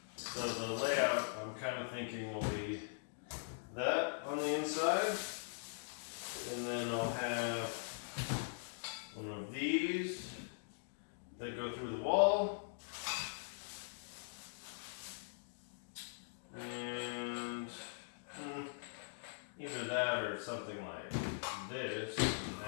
So the layout I'm kind of thinking will be that on the inside. And then I'll have one of these that go through the wall. And either that or something like this. And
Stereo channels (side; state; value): right; silent; digital silence